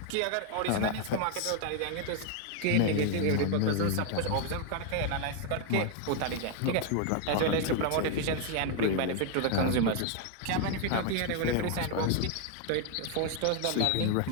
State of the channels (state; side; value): different; both; correlation 0.01